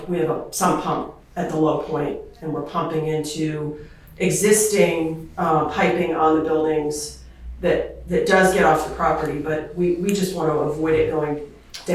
a sump pump at the low point, and we're pumping into existing piping on the buildings that does get off the property, but we just want to avoid it going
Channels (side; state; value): both; identical; correlation 1.00